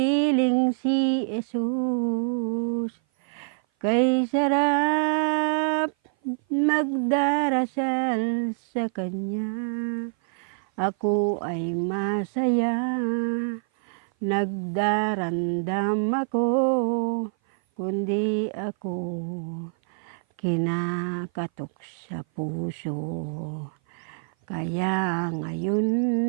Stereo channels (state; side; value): silent; left; 57 dB below the other